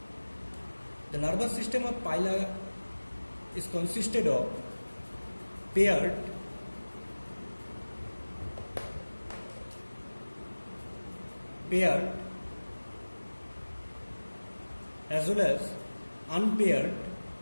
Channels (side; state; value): both; inverted; correlation -1.00